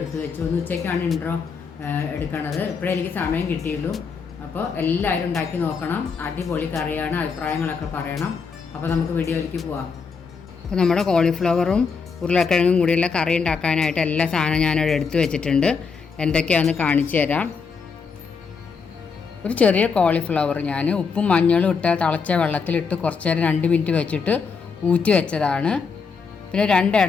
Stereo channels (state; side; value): quieter; right; 5.4 dB